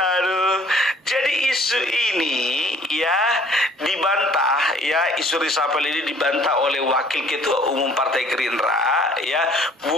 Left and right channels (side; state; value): both; normal; correlation 0.56